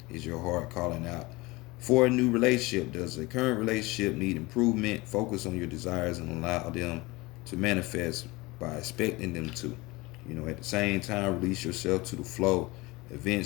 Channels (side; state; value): right; quieter; 22.6 dB